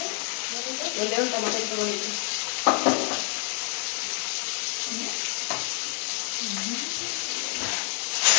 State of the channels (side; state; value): right; quieter; 37.6 dB